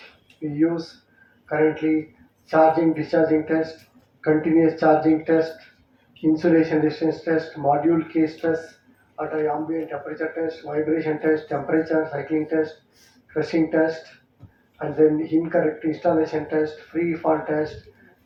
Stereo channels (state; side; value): identical; both; correlation 1.00